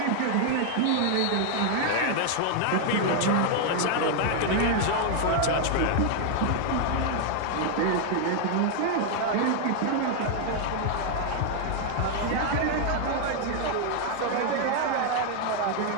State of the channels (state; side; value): different; both; correlation 0.00